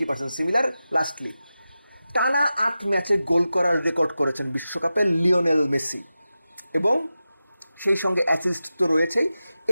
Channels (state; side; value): inverted; both; correlation -0.93